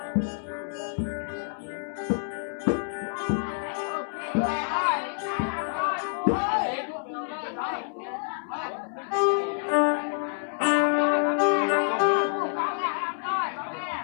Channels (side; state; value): right; silent; 60 dB below the other